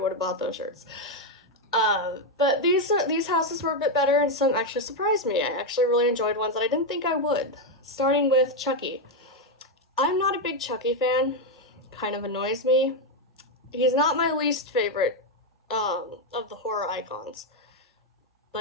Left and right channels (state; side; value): normal; both; correlation 0.04